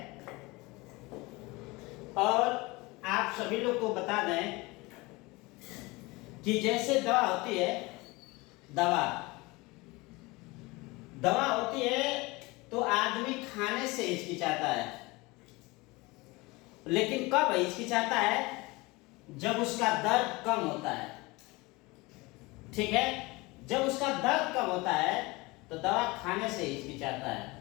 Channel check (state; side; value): quieter; right; 23.4 dB